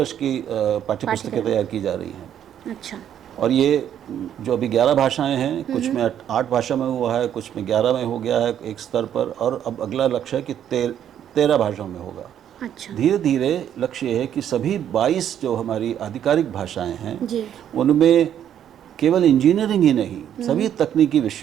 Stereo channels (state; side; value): quieter; left; 9.9 dB